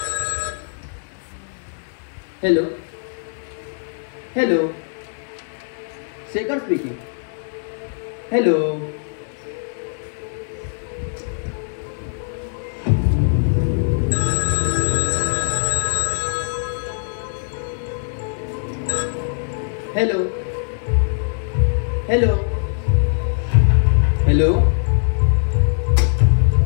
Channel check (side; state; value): right; silent; digital silence